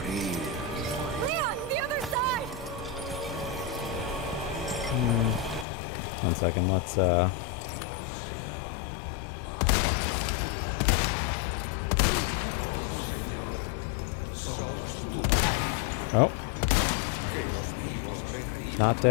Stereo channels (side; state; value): right; drops out; at 5.7 s